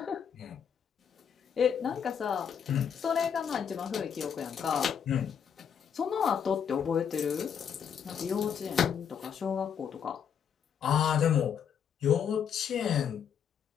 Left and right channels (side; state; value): right; quieter; 7.8 dB